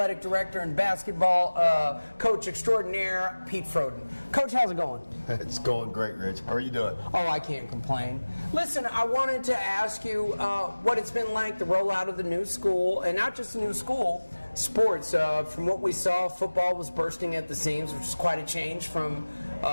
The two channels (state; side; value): inverted; both; correlation -1.00